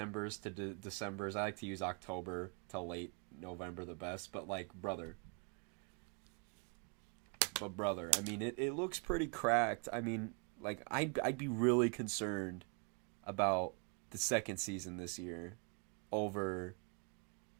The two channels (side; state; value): left; quieter; 34.7 dB